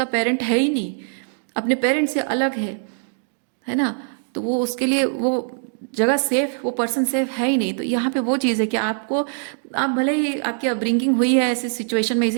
पेरेंट है ही नहीं, अपने पेरेंट से अलग है ना। तो वो उसके लिए वो जगह सेफ, वो पर्सन सेफ है ही नहीं। तो यहाँ पे वो चीज़ है कि आपको, आप भले ही आपकी अपब्रिंगिंग हुई है ऐसी सिचुएशन में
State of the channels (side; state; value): left; silent; digital silence